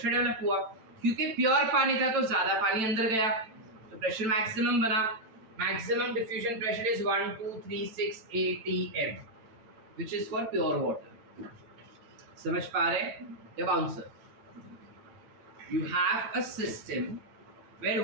डेवलप हुआ, क्योंकि प्योर पानी था तो ज्यादा पानी अंदर गया तो प्रेशर मैक्सिमम बना। Maximum diffusion pressure is 1236 atm which is for pure water. समझ पा रहे हैं? अब answer, you have a system where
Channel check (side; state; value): left; late; 9.1 ms